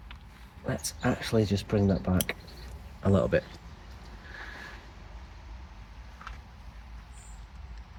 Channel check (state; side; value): identical; both; correlation 1.00